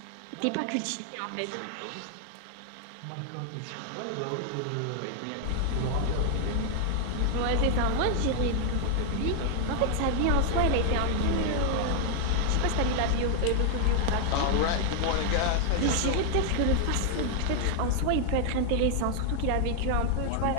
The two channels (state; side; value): different; both; correlation 0.00